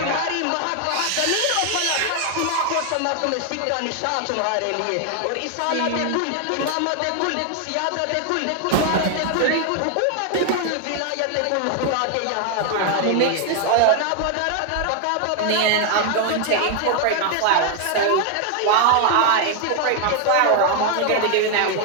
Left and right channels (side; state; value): both; different; correlation 0.00